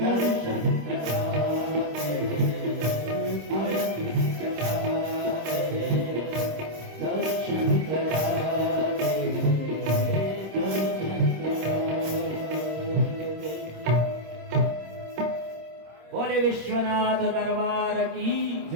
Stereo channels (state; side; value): late; left; 26 ms